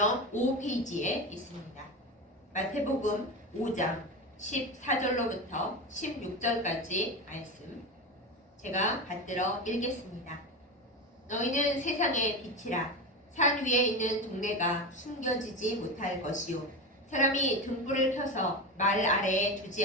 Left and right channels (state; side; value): normal; both; correlation 0.21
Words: 5페이지에 있습니다. 마태복음 5장 14절로부터 16절까지 말씀 제가 받들어 읽겠습니다. 너희는 세상의 빛이라. 산 위에 있는 동네가 숨겨지지 못할 것이요 사람이 등불을 켜서 말 아래에 두지